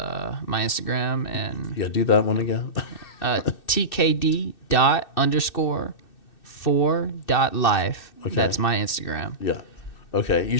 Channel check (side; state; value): right; late; 2.6 ms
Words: my Instagram. And yeah, do that one again. tkd._4.life. Okay. That's my Instagram. Yeah. Okay. You